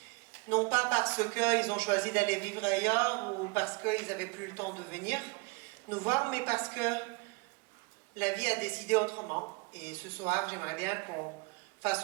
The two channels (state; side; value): quieter; left; 28.5 dB